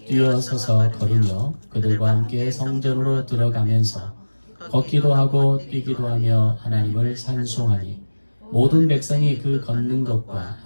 뛰어서서 걸으며 그들과 함께 성전으로 들어가면서 걷기도 하고 뛰기도 하며 하나님을 찬송하니 모든 백성이 그 걷는 것과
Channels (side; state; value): both; inverted; correlation -1.00